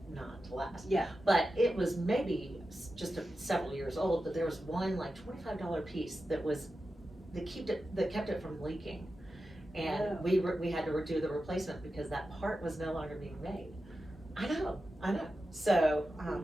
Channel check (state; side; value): normal; both; correlation 0.92